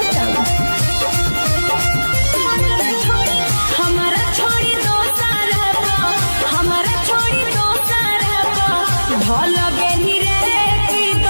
हमारा छोड़ी दो सारा हमारा छोड़ी दो सारा ढोल गे निरे की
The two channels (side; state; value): both; inverted; correlation -1.00